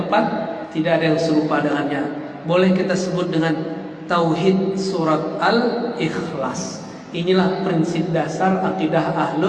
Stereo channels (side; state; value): both; identical; correlation 1.00